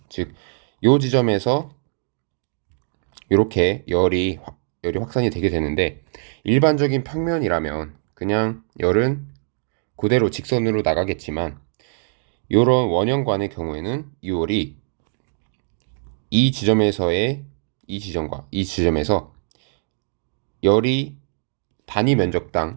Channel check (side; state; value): left; silent; digital silence